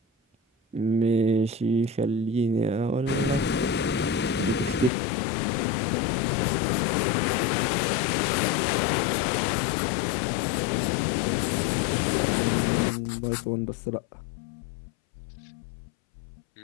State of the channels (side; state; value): right; drops out; at 4.9 s